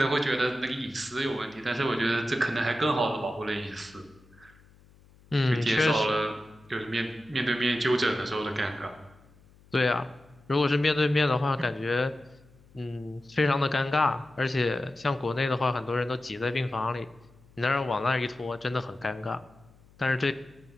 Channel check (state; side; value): noise; left; hum, 27 dB below the sound